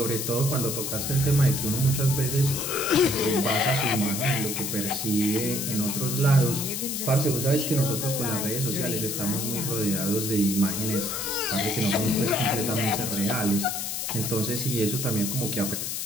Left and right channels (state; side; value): noise; left; hiss, 3 dB below the sound